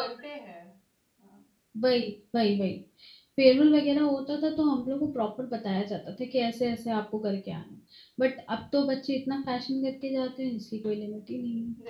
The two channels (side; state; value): both; identical; correlation 1.00